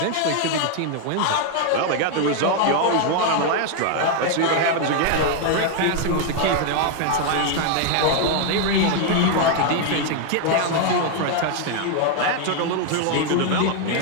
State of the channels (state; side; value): different; both; correlation 0.00